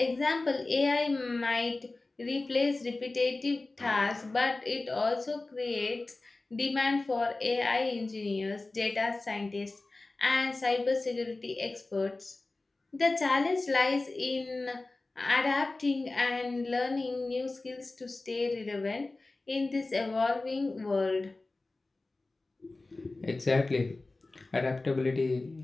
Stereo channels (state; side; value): quieter; right; 3.2 dB